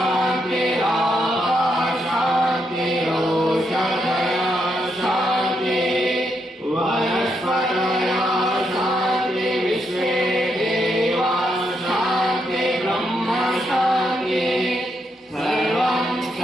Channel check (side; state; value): both; normal; correlation 0.79